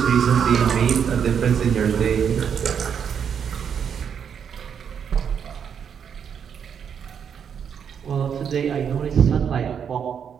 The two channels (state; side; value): quieter; left; 7.6 dB